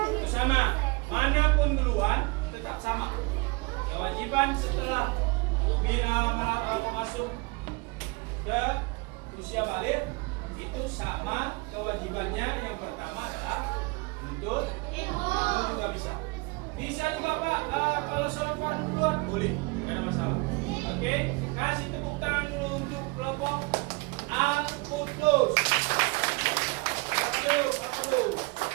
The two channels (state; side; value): quieter; left; 26.9 dB